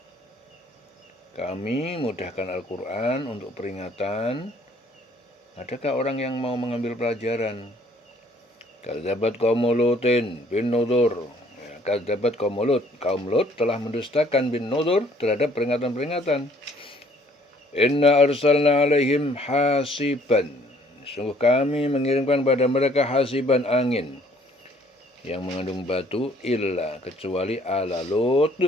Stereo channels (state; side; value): normal; both; correlation 0.60